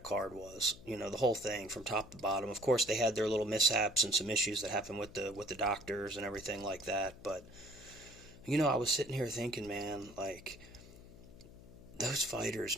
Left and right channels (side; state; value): left; noise; hum, 19 dB below the sound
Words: card was. The whole thing from top to bottom. Of course, they had their little mishaps and some issues that happened with the doctors and everything like that. But I was sitting here thinking, man, like those fighters,